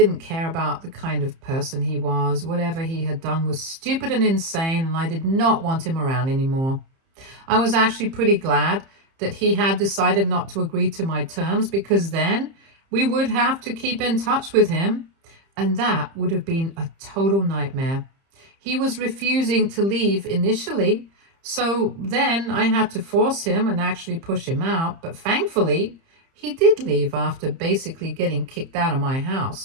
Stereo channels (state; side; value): late; left; 30 ms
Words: care about the kind of person he was. Whatever he had done was stupid and insane, and I did not want him around anymore. I was actually pretty glad that he had decided not to agree to my terms, because then we would have to keep in touch with him, and that would have been a total nightmare. He was refusing to leave initially, so then I had to force him and actually push him out, but thankfully he did leave after basically getting kicked out of my